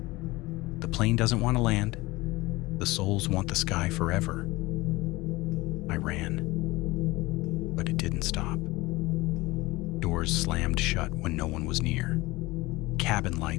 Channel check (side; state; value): right; quieter; 20.8 dB